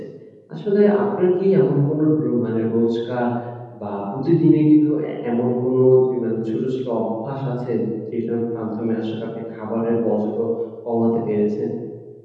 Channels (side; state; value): both; identical; correlation 1.00